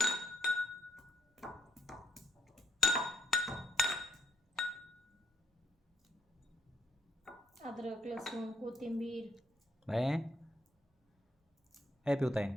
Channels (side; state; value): both; normal; correlation 0.74